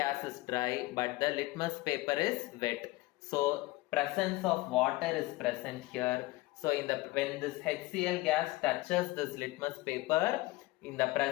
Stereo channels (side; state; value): right; quieter; 19.8 dB